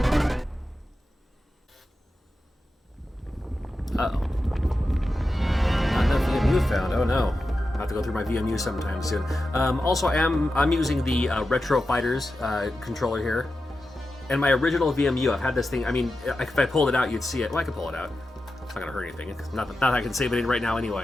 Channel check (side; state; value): both; normal; correlation 0.91